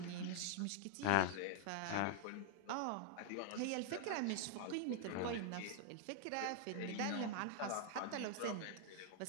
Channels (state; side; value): different; both; correlation -0.01